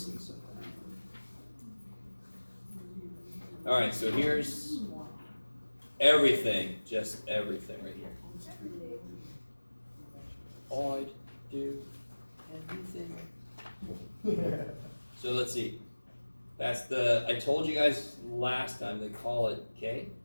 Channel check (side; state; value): both; inverted; correlation -1.00